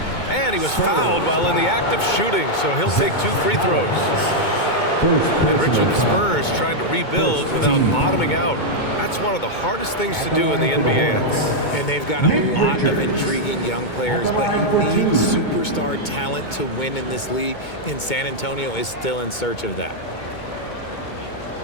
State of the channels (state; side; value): late; right; 2.2 ms